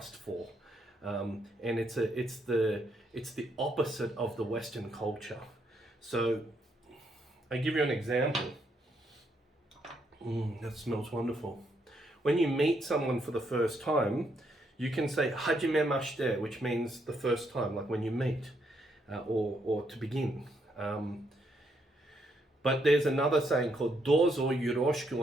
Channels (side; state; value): both; normal; correlation 0.75